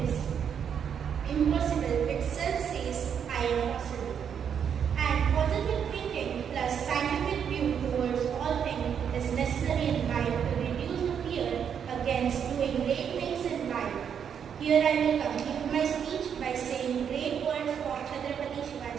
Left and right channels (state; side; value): quieter; left; 7.9 dB